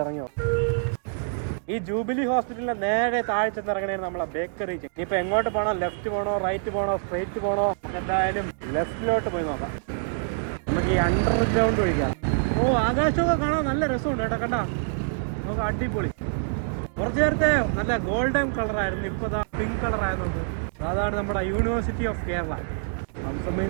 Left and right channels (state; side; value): silent; left; digital silence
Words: ഇറങ്ങി നോക്കാം. ഈ ജൂബിലി ഹോസ്പിറ്റലിന്റെ നേരെ താഴെ ചെന്നിറങ്ങണേ നമ്മളെ ബേക്കറി. ഇനിയിപ്പോ എങ്ങോട്ട് പോകണോ, ലെഫ്റ്റ് പോകണോ, റൈറ്റ് പോകണോ, സ്ട്രെയിറ്റ് പോകണോ? നമുക്ക് എന്തായാലും ലെഫ്റ്റിലോട്ട് പോയി നോക്കാം. നമുക്ക് ഈ അണ്ടർഗ്രൗണ്ട് ഒഴിക്കാം. ആകാശമൊക്കെ കാണാൻ നല്ല രസമുണ്ട് കേട്ടോ. കണ്ടാ നമുക്ക് അടിപൊളി. കുറച്ചു നേരത്തെ നല്ല ഗോൾഡൻ കളറായിരുന്നു, ഇപ്പൊ പിങ്ക് കളറായി നോക്ക്. അതാണ് നമ്മുടെ യൂണിവേഴ്സിറ്റി ഓഫ് കേരള. സംസമിൽ